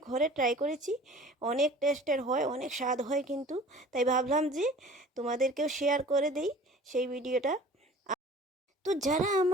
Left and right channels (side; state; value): both; normal; correlation 0.45